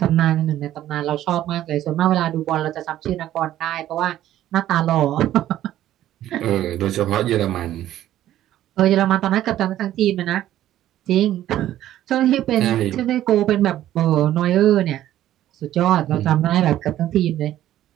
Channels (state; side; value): quieter; left; 12.9 dB